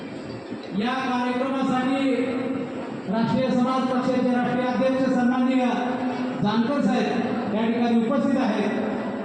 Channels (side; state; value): both; identical; correlation 1.00